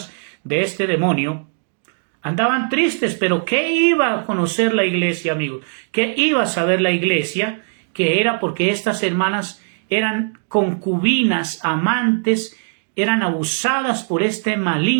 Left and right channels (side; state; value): left; silent; digital silence